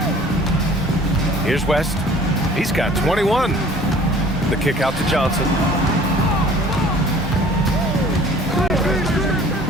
Here's West. He's got 21. The kick out to Johnson.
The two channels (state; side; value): normal; both; correlation 0.51